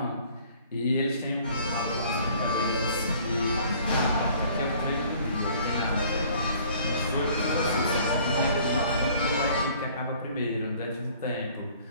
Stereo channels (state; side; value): inverted; both; correlation -0.55